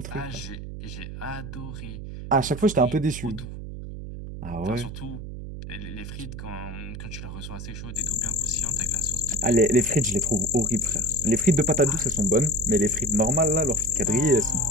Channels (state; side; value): noise; right; hum, 9 dB below the sound